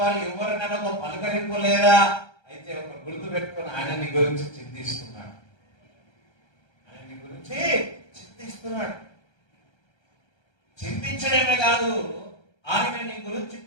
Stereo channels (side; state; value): right; late; 1.3 ms